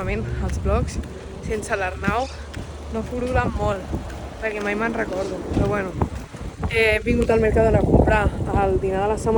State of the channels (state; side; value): identical; both; correlation 1.00